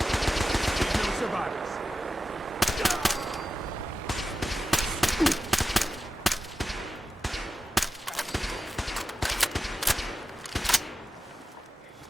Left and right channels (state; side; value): normal; both; correlation 0.92